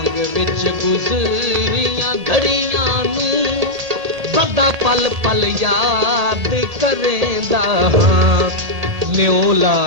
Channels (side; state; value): left; late; 1.8 ms